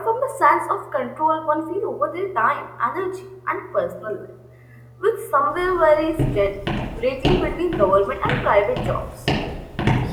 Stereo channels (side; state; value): both; identical; correlation 1.00